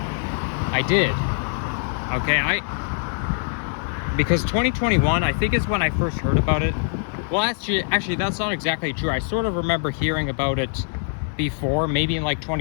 I did. Okay, because 2021, I think, is when I first heard about it. Well, actually, that's not exactly true. I sort of remember hearing about it before, maybe in like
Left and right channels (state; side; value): silent; right; 63 dB below the other